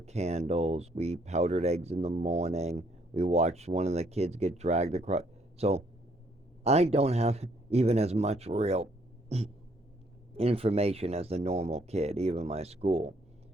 candles. We powdered eggs in the morning. We watched one of the kids get dragged across. So I don't have even as much real information as the normal kid, even my school.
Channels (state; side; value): normal; both; correlation 0.68